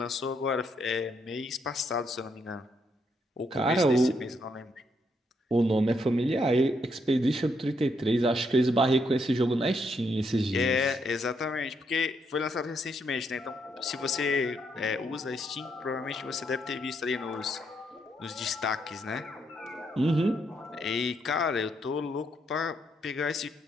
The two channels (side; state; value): both; normal; correlation 0.76